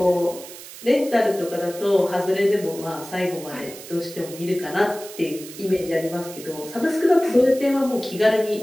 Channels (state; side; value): noise; right; hiss, 15 dB below the sound